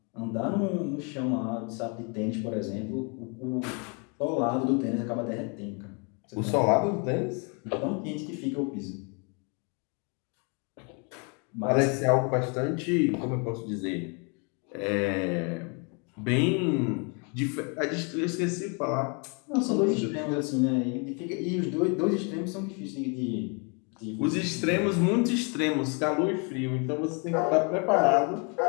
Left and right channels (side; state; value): right; quieter; 34.9 dB